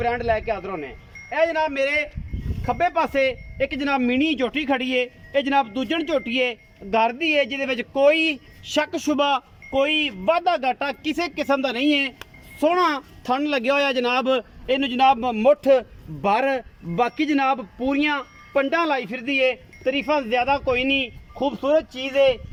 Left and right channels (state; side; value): identical; both; correlation 1.00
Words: लैके हाजिर होने। यह जनाब मेरे खब्बे पासे एक जनाब मिनी झोटी खड़ी है, ये जनाब दूजन झोटी है घर दी है, जिहदे कोई शक शुबा कोई वाधा घाटा किसी किस्म का नहीं है। सोहना थन लग्या होया जनाब, इनू जनाब मुठ भर बाकी जनाब पूरियां पंडा लाई फिरदी है, तरीफा ज़्यादा कोई नहीं, खूबसूरत चीज़ है,